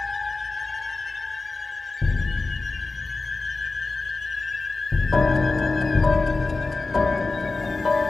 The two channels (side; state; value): right; quieter; 3.5 dB